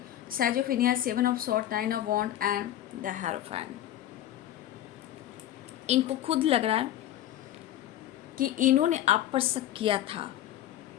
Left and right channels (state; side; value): quieter; right; 12.6 dB